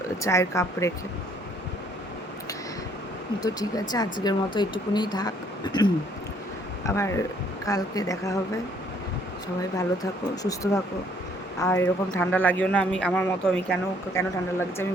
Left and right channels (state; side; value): normal; both; correlation 0.63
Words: চায়ের কাপ রেখে। তো ঠিক আছে, আজকের মতো এইটুকুনি থাক, আবার কালকে দেখা হবে। সবাই ভালো থাকো, সুস্থ থাকো, আর এরকম ঠান্ডা লাগিও না। আমার মতো আমি কেন ঠান্ডা লাগছে আমি